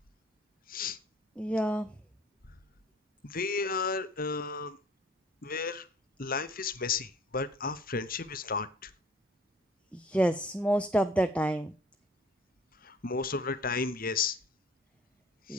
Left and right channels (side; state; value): both; normal; correlation 0.52